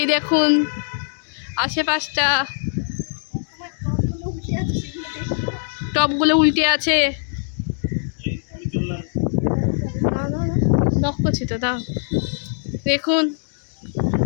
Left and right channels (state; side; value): silent; right; digital silence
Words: দেখুন আশেপাশটা, টপগুলো উল্টে আছে। নক করছি তো, দাও দেখুন।